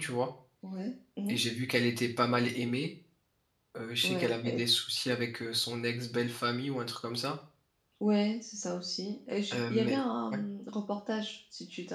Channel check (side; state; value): both; identical; correlation 1.00